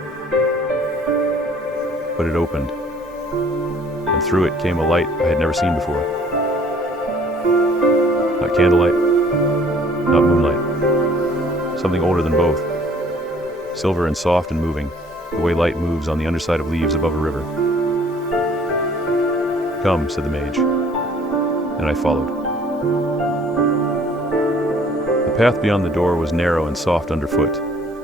But it opened, and through it came a light I had never seen before. Not candlelight, not moonlight. Something older than both. Silver and soft and moving, the way light moves on the underside of leaves above a river. "Come," said the mage, and I followed. The path beyond the door was narrow and soft underfoot.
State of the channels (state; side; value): normal; both; correlation 0.57